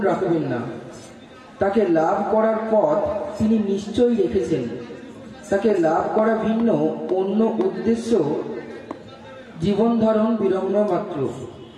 রাখবেন না। তাকে লাভ করার পথ তিনি নিশ্চয়ই রেখেছেন। তাকে লাভ করা ভিন্ন অন্য উদ্দেশ্য জীবন ধারণ বিড়ম্ব মাত্র।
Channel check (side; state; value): both; identical; correlation 1.00